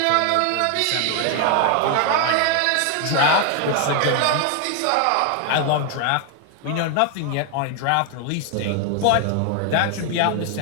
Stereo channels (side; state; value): both; different; correlation 0.01